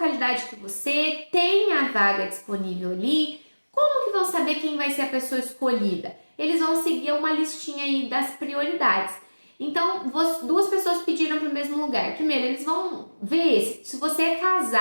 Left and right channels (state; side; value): inverted; both; correlation -1.00